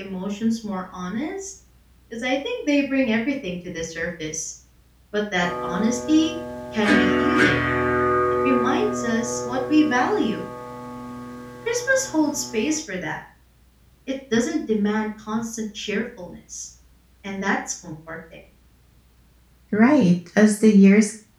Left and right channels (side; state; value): both; identical; correlation 1.00